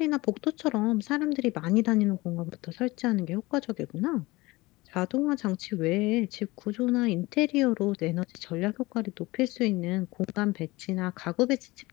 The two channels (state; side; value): quieter; right; 21.3 dB